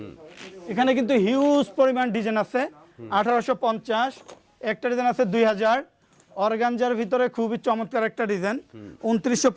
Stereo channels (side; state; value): both; identical; correlation 1.00